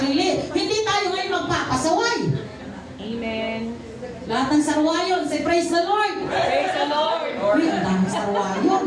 Hindi tayo ngayon magpapasaway. Amen. Lahat ng sarwayon, say praise the Lord. Praise the Lord. Uy, ang daming sarwayon.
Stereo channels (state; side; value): identical; both; correlation 1.00